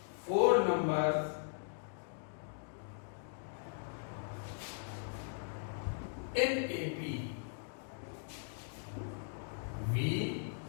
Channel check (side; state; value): right; silent; digital silence